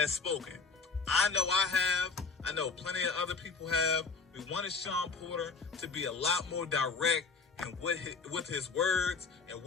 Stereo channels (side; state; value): right; quieter; 4.6 dB